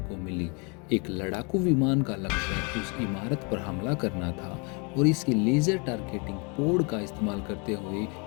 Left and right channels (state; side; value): quieter; right; 32.8 dB